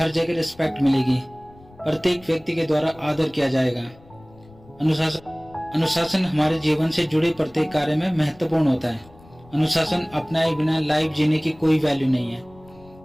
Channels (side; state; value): left; noise; rumble, 25 dB below the sound